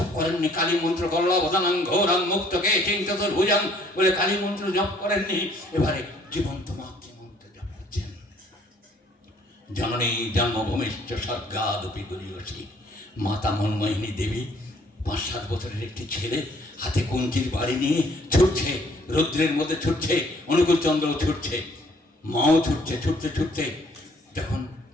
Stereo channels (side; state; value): both; normal; correlation 0.61